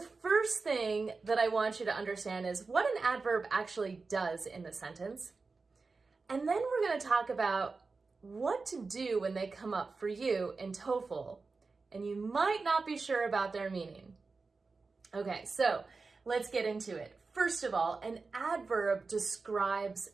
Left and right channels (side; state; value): left; quieter; 4.1 dB